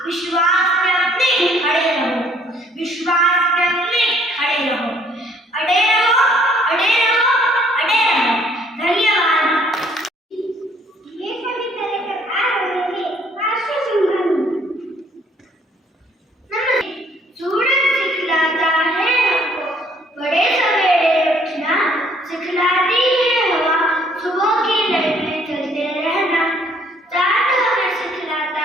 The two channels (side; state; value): both; normal; correlation 0.62